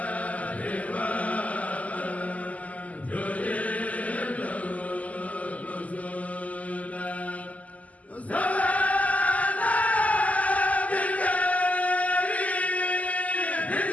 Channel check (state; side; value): late; right; 0.073 ms